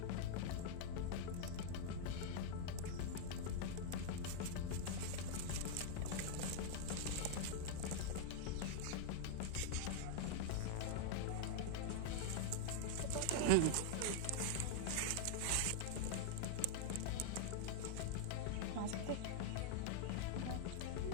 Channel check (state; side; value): different; both; correlation -0.01